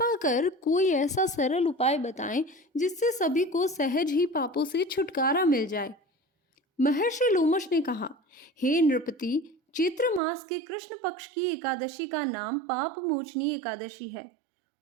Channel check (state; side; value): drops out; left; at 10.2 s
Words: कर कोई ऐसा सरल उपाय बताएं जिससे सभी को सहज ही पापों से छुटकारा मिल जाए। महर्षि लोमश ने कहा, हे नृपति, चैत्र मास के कृष्ण पक्ष की एकादशी का नाम पाप मोचनी एकादशी है।